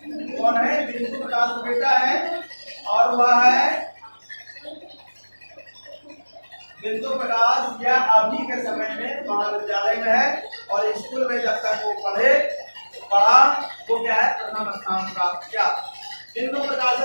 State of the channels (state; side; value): inverted; both; correlation -1.00